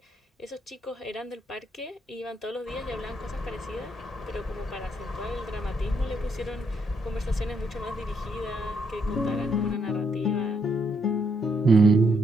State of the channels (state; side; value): normal; both; correlation 0.75